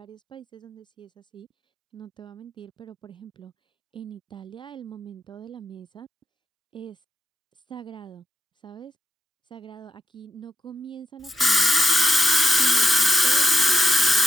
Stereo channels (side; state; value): both; normal; correlation 0.86